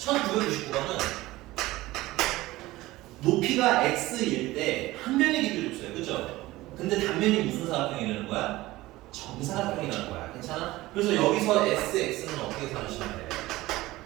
높이가 x일 때 한 면의 길이를 줬어요. 그죠? 근데 단면이 무슨 사각형이라는 거야? 정사각형이라는 거야. 괜찮아? 그래서 여기서 sx는 어떻게 사시면 돼?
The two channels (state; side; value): quieter; left; 18.2 dB